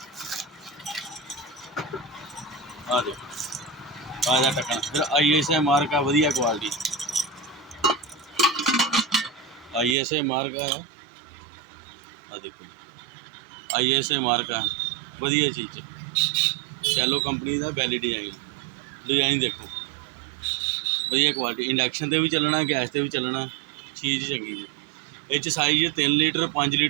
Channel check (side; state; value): left; drops out; at 10.0 s